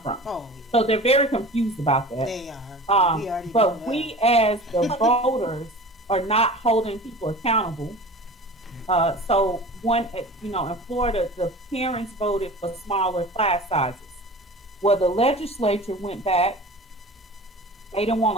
So they're very confused about that. They are. But we as the voters are not holding people accountable. So you know, in Florida, the parents voted for smaller class sizes. Well, the legislature went back. They didn't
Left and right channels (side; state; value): both; normal; correlation 0.38